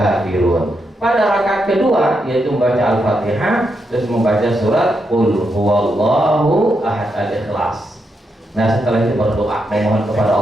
Pada rakaat kedua yaitu membaca Al-Fatihah, terus membaca surat Qul huwallahu ahad, Al-Ikhlas. Nah setelah itu berdoa memohon kepada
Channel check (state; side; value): normal; both; correlation 0.82